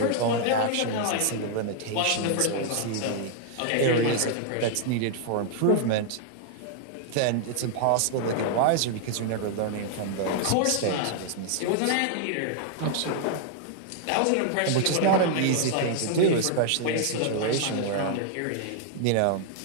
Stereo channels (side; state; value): both; different; correlation 0.00